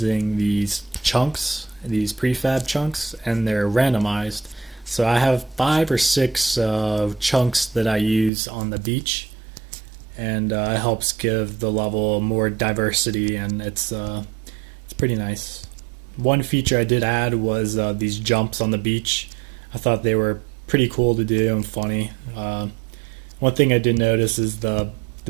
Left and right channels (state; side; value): drops out; left; at 8.3 s